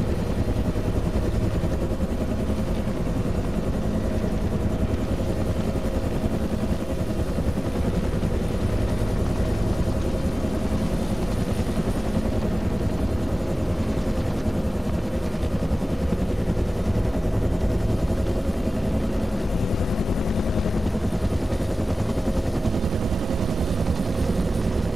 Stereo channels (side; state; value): both; normal; correlation 0.97